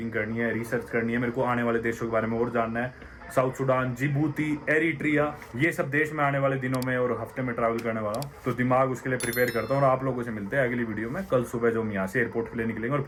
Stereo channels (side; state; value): both; identical; correlation 1.00